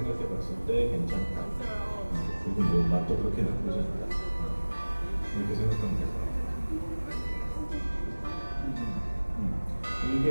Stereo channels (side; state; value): both; inverted; correlation -1.00